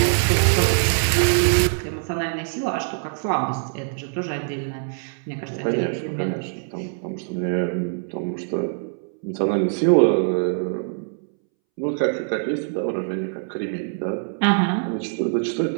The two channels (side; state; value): left; silent; 63 dB below the other